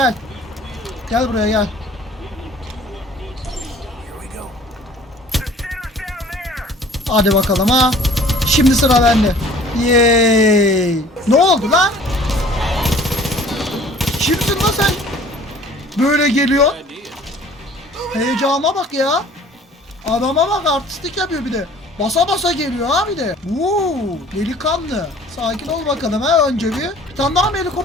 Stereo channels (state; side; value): normal; both; correlation 0.51